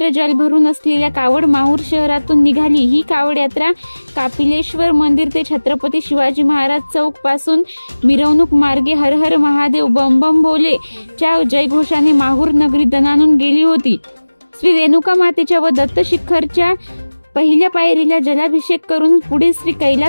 जल भरून असलेल्या कावड माहूर शहरातून निघाली। ही कावड यात्रा कापिलेश्वर मंदिर ते छत्रपती शिवाजी महाराज चौक पासून मिरवणूक मार्गे हर हर महादेव बम बम भोले च्या जयघोषाने माहूर नगरी दणाणून गेली होती। श्री रेणुका मातेच्या व दत्त शिखरच्या पहिल्या पायरीला जलाभिषेक करून पुढे श्री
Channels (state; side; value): inverted; both; correlation -1.00